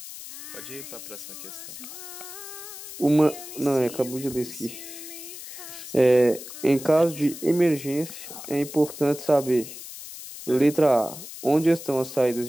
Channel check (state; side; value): noise; left; hiss, 12 dB below the sound